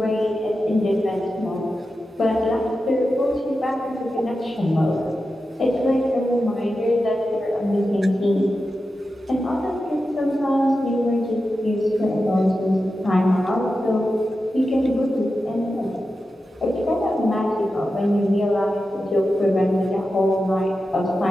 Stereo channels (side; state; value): both; normal; correlation 0.91